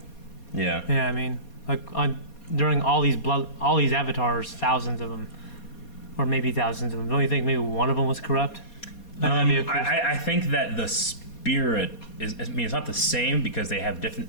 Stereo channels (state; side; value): late; right; 4.2 ms